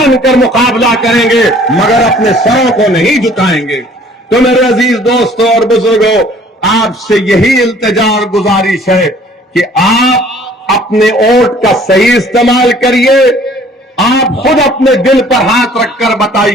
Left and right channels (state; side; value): normal; both; correlation 0.55